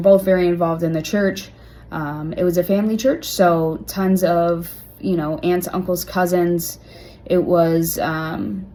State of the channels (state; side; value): identical; both; correlation 1.00